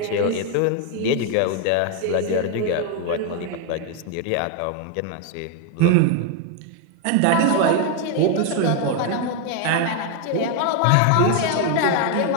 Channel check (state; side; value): different; both; correlation 0.01